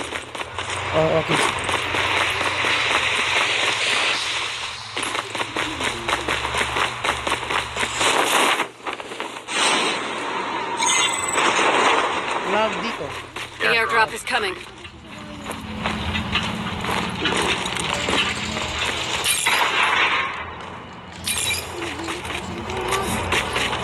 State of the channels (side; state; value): both; identical; correlation 1.00